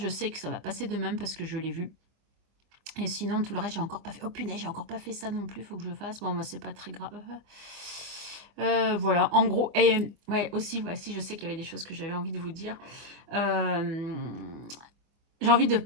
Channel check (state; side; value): late; left; 24 ms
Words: sais que ça va passer demain parce que je l'ai vu. Et sinon, tout le reste, j'ai encore pas fait. Oh punaise, j'ai encore pas fait ça non plus, faut que je fasse. Bon, bah, c'est pas très grave. Voilà, en gros, et ouais, aussi, ouais, si je sais qu'il y avait des choses que j'avais envie de vous dire. J'ai envie de